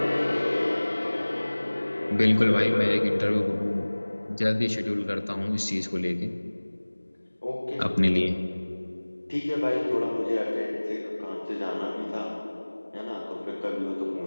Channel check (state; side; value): inverted; both; correlation -1.00